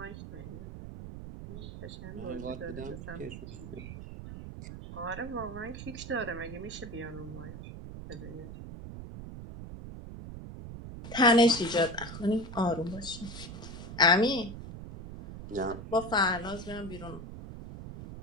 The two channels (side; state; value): right; noise; rumble, 10 dB below the sound